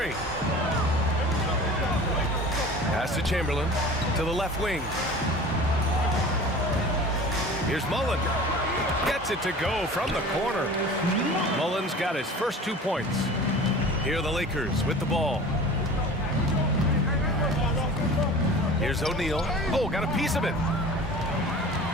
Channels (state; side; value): normal; both; correlation 0.40